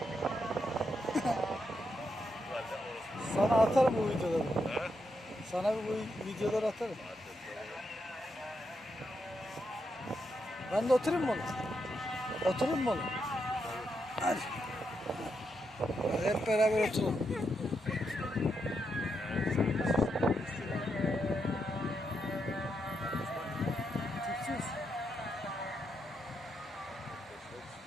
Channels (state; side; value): normal; both; correlation 0.82